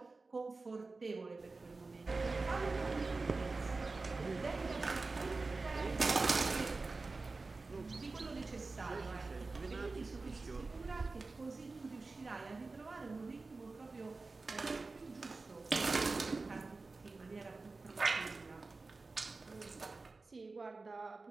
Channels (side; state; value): left; quieter; 3.7 dB